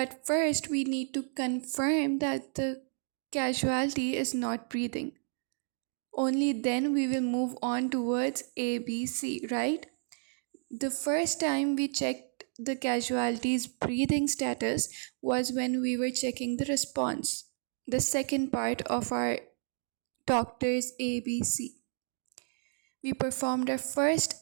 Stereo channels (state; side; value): silent; left; digital silence